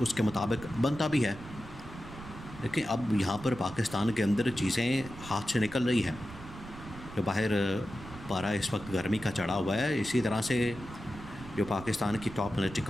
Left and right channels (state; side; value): noise; right; rumble, 15 dB below the sound